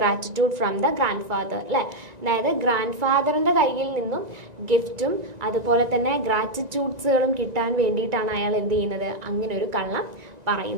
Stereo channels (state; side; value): late; left; 1.9 ms